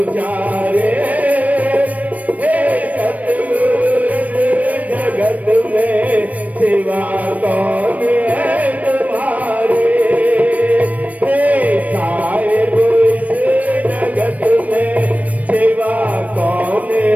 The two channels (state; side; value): late; left; 0.071 ms